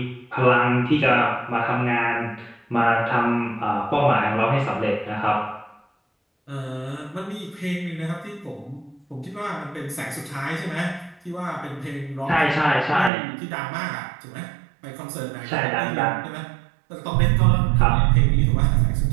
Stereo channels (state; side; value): drops out; left; at 13.1 s